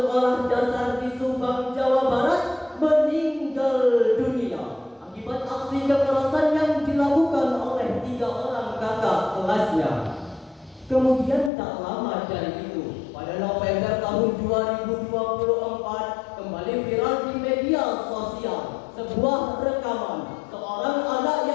dasar di Subang, Jawa Barat meninggal dunia akibat aksi kekerasan yang dilakukan oleh 3 orang kakak kelasnya. Kemudian tak lama dari itu, pada November tahun 2024, kembali viral di media sosial sebuah rekaman seorang anak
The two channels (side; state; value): right; drops out; at 11.5 s